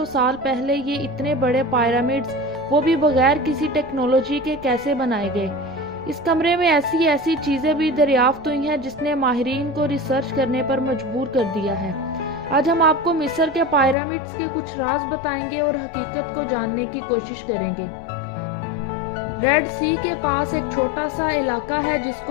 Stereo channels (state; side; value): drops out; right; at 14.0 s